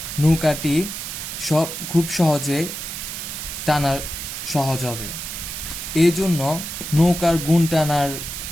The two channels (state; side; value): noise; right; hiss, 7 dB below the sound